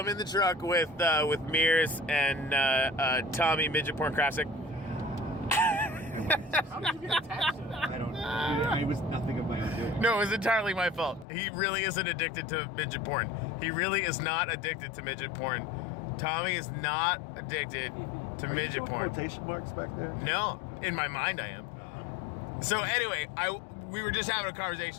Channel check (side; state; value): right; drops out; at 11.2 s